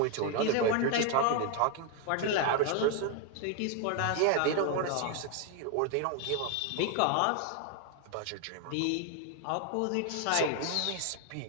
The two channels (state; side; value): different; both; correlation 0.01